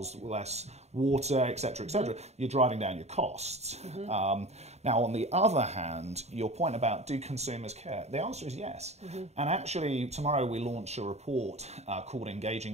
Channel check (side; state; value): left; late; 0.32 ms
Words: less water, etc., you're driving down your costs. Now, on the other hand, your point about do consumers care? The answer is yes. And actually, tomorrow we launch a report called